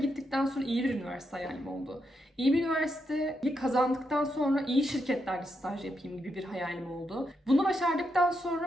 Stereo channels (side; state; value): both; normal; correlation 0.82